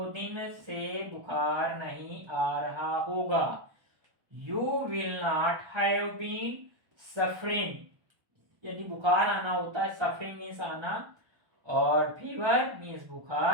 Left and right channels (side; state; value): left; late; 1.1 ms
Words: दिन से बुखार नहीं आ रहा होगा। You will not have been suffering, यदि बुखार आना होता है, सफरिंग मीन्स आना, और फीवर मीन्स